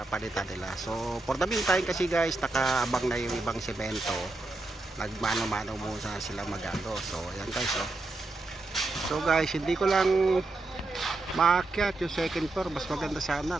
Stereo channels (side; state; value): left; quieter; 3.1 dB